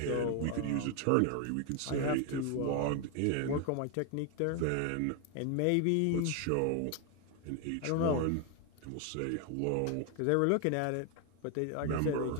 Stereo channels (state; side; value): different; both; correlation 0.01